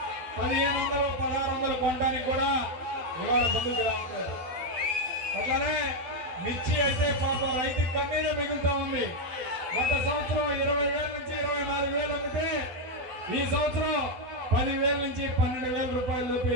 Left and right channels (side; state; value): left; late; 12 ms